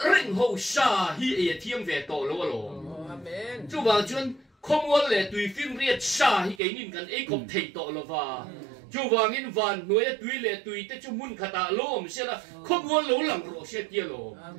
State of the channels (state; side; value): drops out; left; at 6.6 s